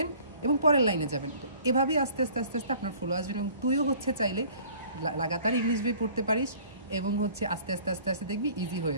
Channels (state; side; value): inverted; both; correlation -0.52